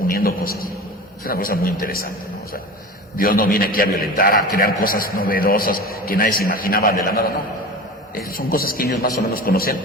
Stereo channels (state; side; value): normal; both; correlation 0.32